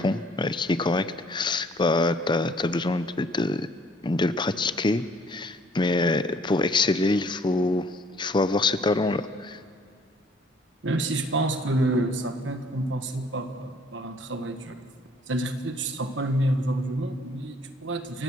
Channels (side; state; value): both; normal; correlation 0.59